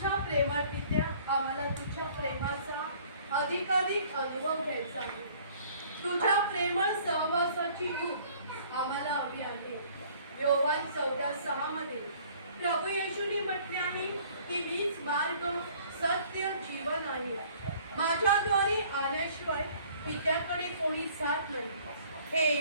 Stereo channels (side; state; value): both; inverted; correlation -0.55